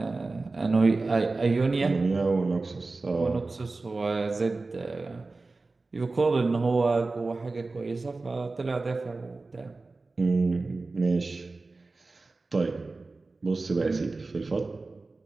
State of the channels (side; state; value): left; quieter; 3.6 dB